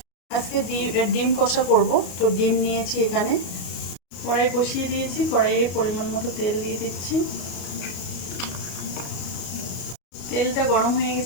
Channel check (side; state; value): right; late; 33 ms